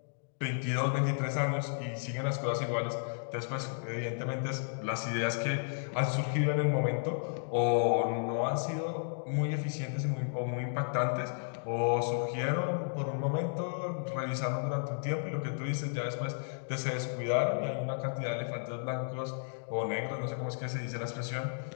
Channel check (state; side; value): silent; right; digital silence